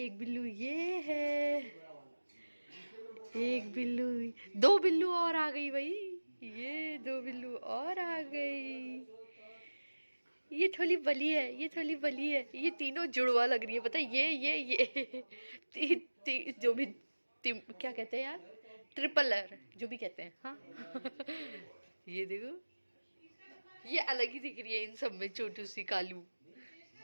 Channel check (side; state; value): both; inverted; correlation -1.00